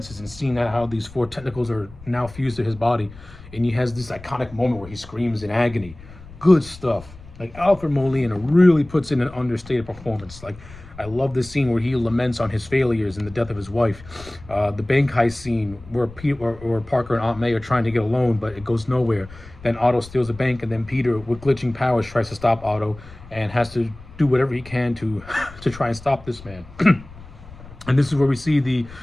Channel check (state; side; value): noise; left; rumble, 19 dB below the sound